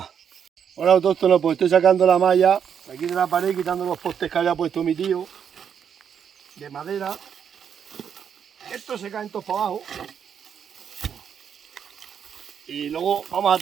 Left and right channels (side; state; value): left; quieter; 7.9 dB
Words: Ahora todo esto no, pues estoy sacando la malla aquí de la pared, quitando los postes que había puesto mi tío de madera. Estos se caen todos para abajo. Y luego vamos a